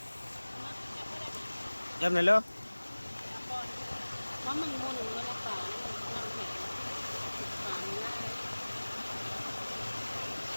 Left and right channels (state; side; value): inverted; both; correlation -1.00